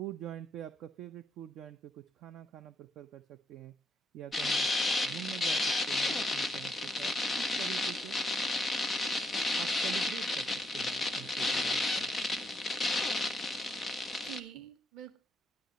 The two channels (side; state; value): both; normal; correlation 0.77